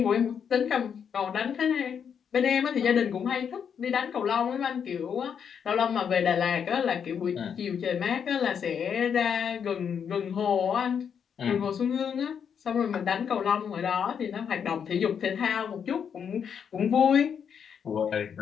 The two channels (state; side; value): quieter; right; 7.5 dB